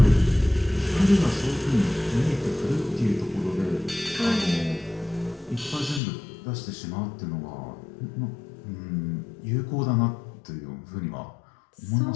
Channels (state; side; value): drops out; right; at 6.0 s